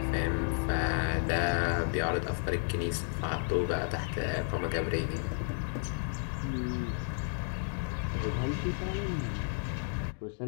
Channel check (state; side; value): silent; right; 56 dB below the other